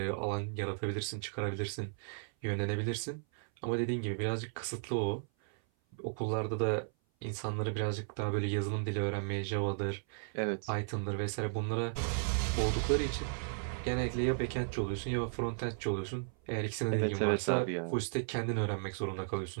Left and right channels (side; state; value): left; silent; 54 dB below the other